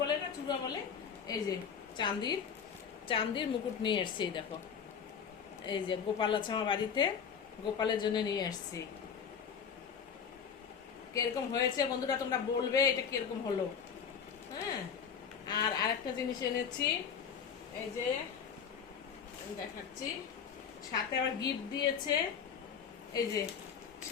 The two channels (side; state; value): right; quieter; 7.1 dB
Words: বলে না চূড়া বলে, এই যে চাঁদির চাঁদির মুকুট নিয়ে আসছি। এই দেখো, এই যে গোপাল আছে আমার বাড়িতে, গোপালের জন্য নিয়ে আসছি। কিরকম হয়েছে বন্ধুরা তোমরা বলবে এটা কিরকম হলো। হ্যাঁ, আর আরেকটা জিনিস এনেছি, এই যে আমি দেখাচ্ছি, সাথে আবার গিফট দিয়েছে। এই যে